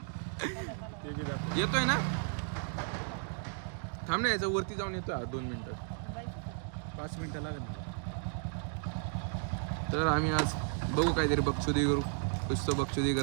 येतोय ना थांब ना याचा वरती जाऊन येतोय 2 मिनिटात 5 मिनिटं लागेल मला. तर आम्ही आज बघू काहीतरी बक्षुदी करू कुछ तो बक्षुदी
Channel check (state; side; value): silent; left; 55 dB below the other